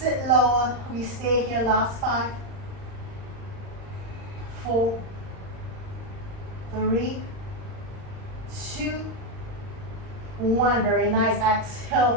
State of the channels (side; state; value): left; late; 39 ms